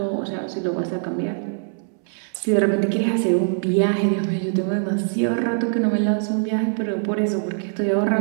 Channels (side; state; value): left; silent; 64 dB below the other